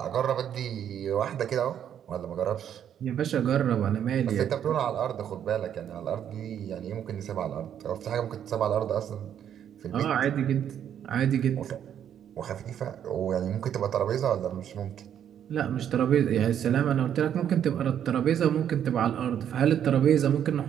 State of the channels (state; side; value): quieter; left; 9.5 dB